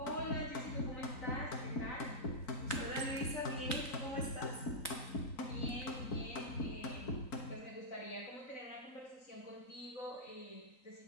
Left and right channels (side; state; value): right; late; 3.9 ms